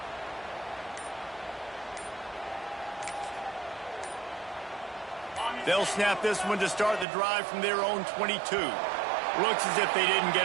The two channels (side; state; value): left; drops out; at 7.1 s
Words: They'll snap this one to start the drive from their own 22. Looks as if they didn't